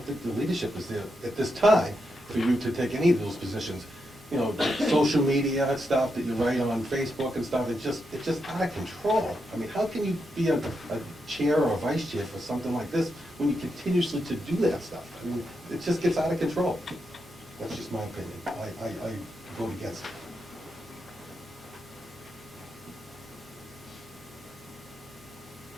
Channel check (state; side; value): noise; right; hum, 25 dB below the sound